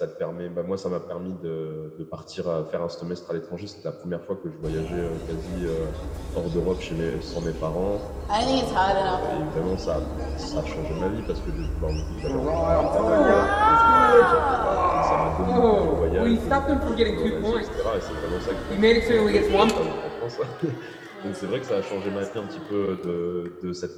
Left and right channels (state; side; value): identical; both; correlation 1.00